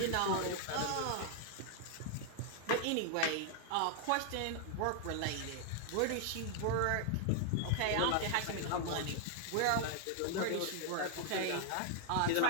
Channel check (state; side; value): different; both; correlation 0.00